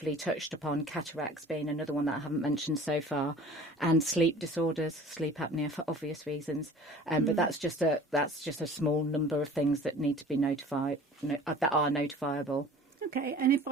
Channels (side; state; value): both; normal; correlation 0.45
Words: touched upon, cataracts being another one that I haven't mentioned so far, and sleep disorders, sleep apnea for obvious reasons. But that's just a small number of things that need to be notified, that are notifiable. Okay, and if